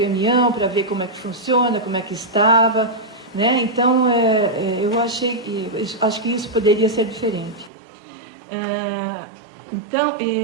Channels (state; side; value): drops out; left; at 7.7 s